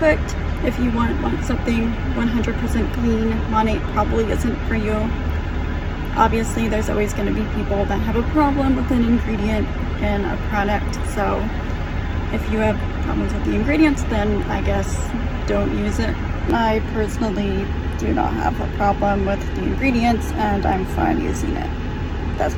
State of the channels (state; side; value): identical; both; correlation 1.00